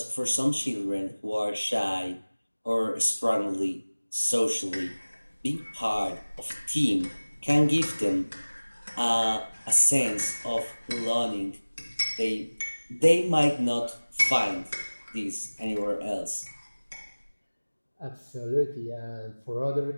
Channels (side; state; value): both; inverted; correlation -1.00